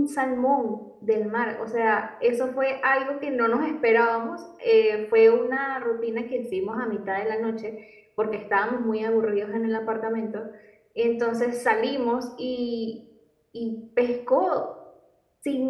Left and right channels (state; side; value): identical; both; correlation 1.00